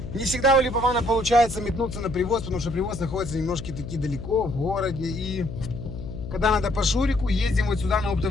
Не всегда у Липована получается метнуться на привоз, потому что привоз находится немножко таки далеко, в городе. И когда надо по Шурику, ездим вот сюда на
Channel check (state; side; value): noise; left; hum, 9 dB below the sound